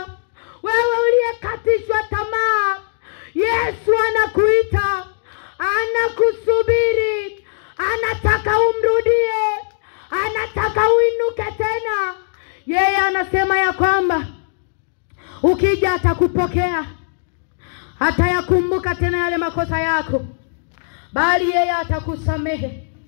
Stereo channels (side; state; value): right; silent; digital silence